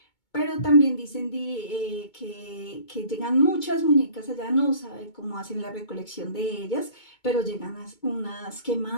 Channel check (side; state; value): right; late; 2.2 ms